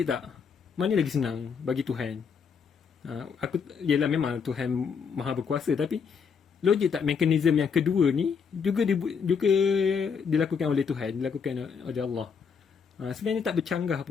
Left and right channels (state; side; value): quieter; right; 6.2 dB